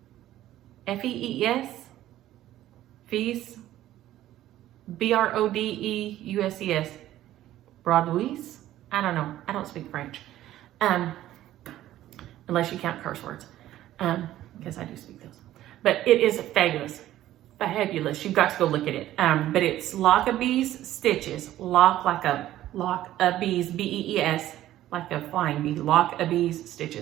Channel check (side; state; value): left; quieter; 13.7 dB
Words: F-E-E-S, Fees, B-R-O-D-E-U-S-E-S, Broadouis, I don't know, I don't speak French, unless you count curse words, because I do speak those, but it is fabulous, you've got to go look at it, but it's Lockerbie's stitches, Lockerbie's, B-E-E-S, like a flying bee, Lockerbie's